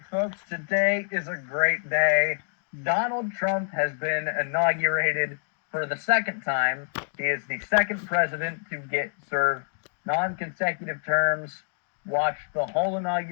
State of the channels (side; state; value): right; silent; digital silence